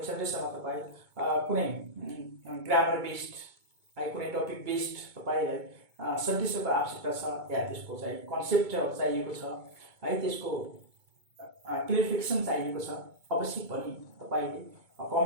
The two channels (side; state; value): left; late; 2.2 ms